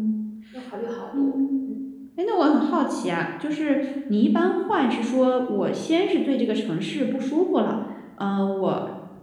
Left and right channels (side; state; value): both; identical; correlation 1.00